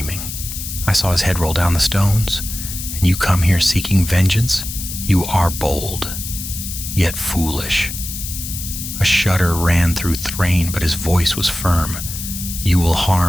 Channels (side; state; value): left; noise; hiss, 7 dB below the sound